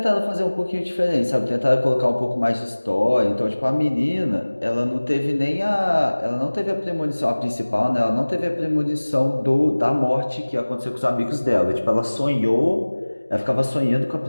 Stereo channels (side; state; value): both; inverted; correlation -1.00